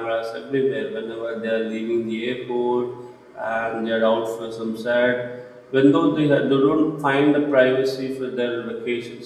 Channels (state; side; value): identical; both; correlation 1.00